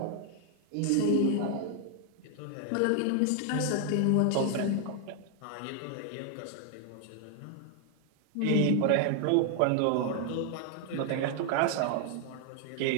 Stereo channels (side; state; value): both; different; correlation 0.00